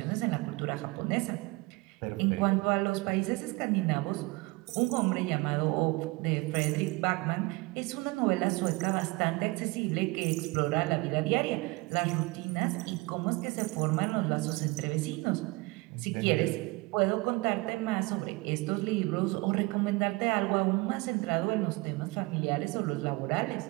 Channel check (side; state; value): left; quieter; 24.0 dB